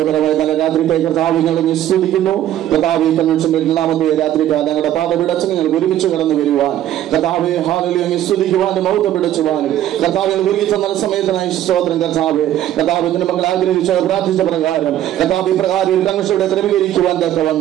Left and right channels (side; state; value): left; quieter; 12.3 dB